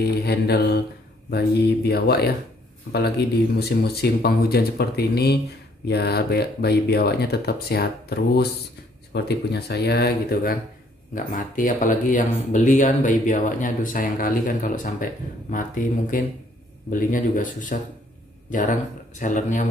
handle bayi biawak ya, apalagi di musim-musim penghujan seperti ini, biar bayi biawaknya tetap sehat terus seperti punya saya gitu kan, nggak mati. Apalagi yang beli kan bayi biawaknya, aduh sayang kali kan kalau sampai mati, mungkin belinya juga susah, jarang sellernya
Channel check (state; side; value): normal; both; correlation 0.64